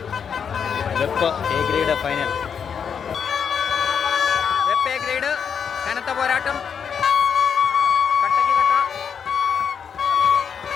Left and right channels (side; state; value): right; quieter; 7.1 dB